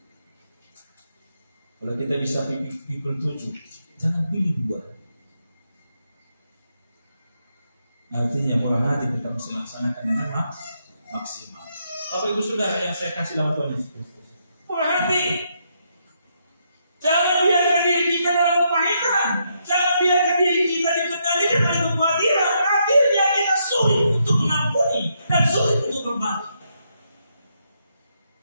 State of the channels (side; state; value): both; inverted; correlation -0.78